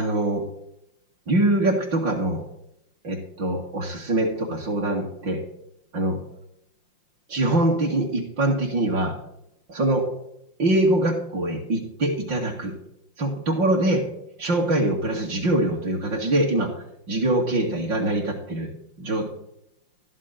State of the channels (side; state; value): left; late; 5.7 ms